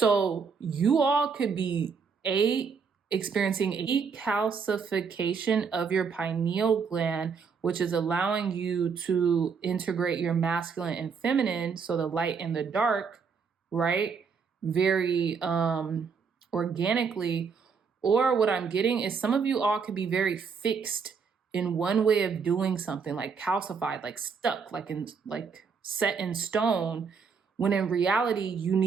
you all could be experiencing a calcification of your pineal gland, which is allowing you to integrate your masculine and feminine, so the light and the dark, right? Very organically. Or what I'm getting is some of you all could be very fixed in one way of doing something, like calcified, like stuck, like set in stone, when in reality you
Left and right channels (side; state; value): left; quieter; 5.8 dB